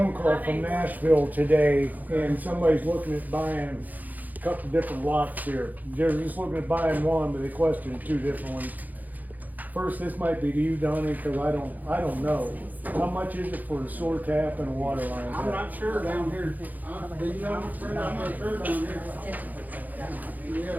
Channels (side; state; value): left; late; 0.082 ms